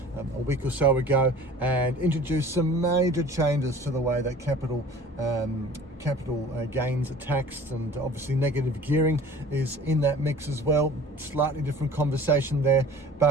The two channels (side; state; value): both; normal; correlation 0.45